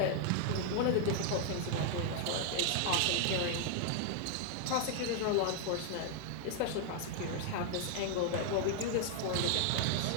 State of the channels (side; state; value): both; different; correlation 0.00